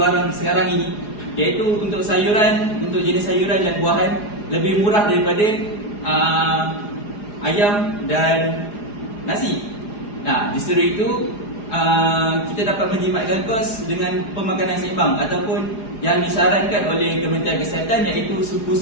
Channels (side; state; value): right; late; 4.8 ms